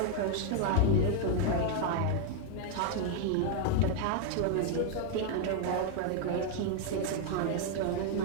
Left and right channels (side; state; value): both; different; correlation 0.00